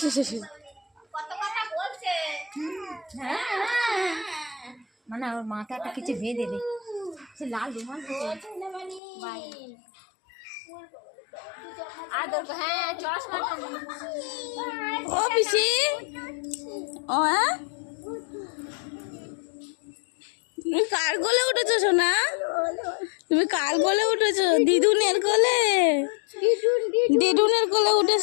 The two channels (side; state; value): right; drops out; at 9.0 s